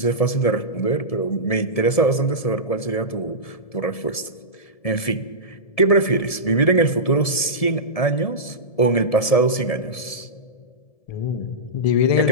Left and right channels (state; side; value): late; right; 1.7 ms